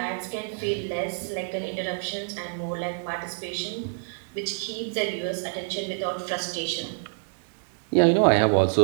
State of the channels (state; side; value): silent; left; digital silence